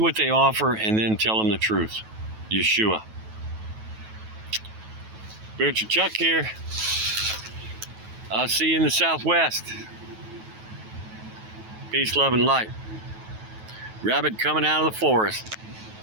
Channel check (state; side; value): late; left; 9.2 ms